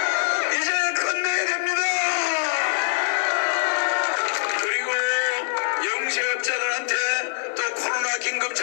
이제 끝내야 됩니다. 그리고 영세업자들한테 또 코로나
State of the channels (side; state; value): right; silent; 61 dB below the other